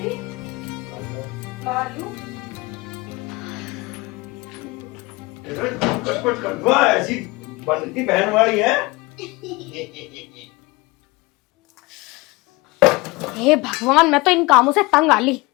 आलू। कुछ कर दो, ऐसी बनती बहन वाली है। हे भगवान, मैं तो इन कामों से तंग आ ली।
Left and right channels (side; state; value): right; quieter; 23.9 dB